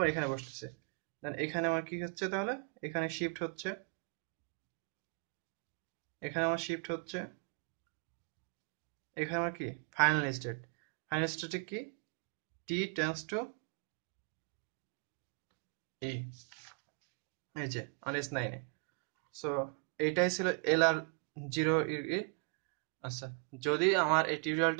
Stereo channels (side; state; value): left; quieter; 36.7 dB